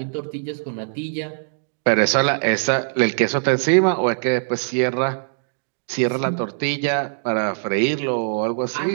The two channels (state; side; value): silent; left; digital silence